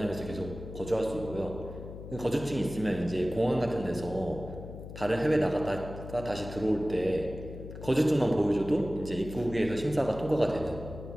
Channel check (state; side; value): noise; left; hum, 11 dB below the sound